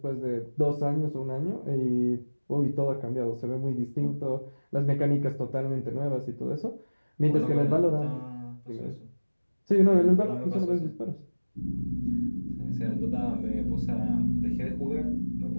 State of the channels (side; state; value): both; inverted; correlation -1.00